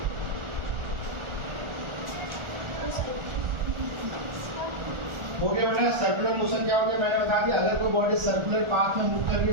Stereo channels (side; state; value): left; late; 1.4 ms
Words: हो गया बेटा। सर्कुलर मोशन क्या होता है मैंने बता दिया। अगर कोई बॉडी सर्कुलर पाथ में मूव कर रही